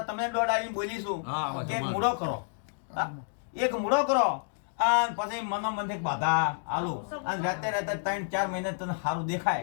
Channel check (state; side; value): silent; right; digital silence